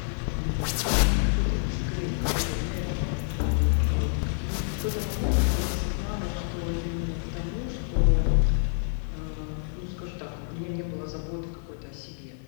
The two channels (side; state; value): right; silent; 60 dB below the other